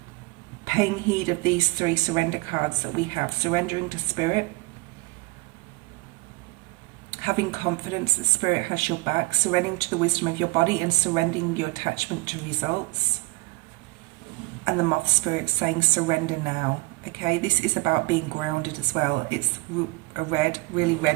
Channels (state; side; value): quieter; left; 24.1 dB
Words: paying heed of these 3 surrender cards that we have. Surrendering to Spirit, having confidence that Spirit has your back, surrendering to the wisdom of your body, and surrendering your attachment to results. And the moth spirit saying surrender now, okay? This is about being grounded as well. It's a red, really